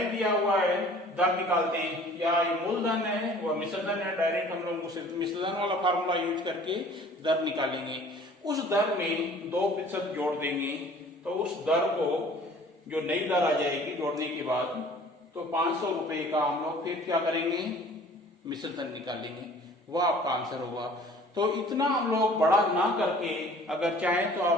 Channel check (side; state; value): both; normal; correlation 0.50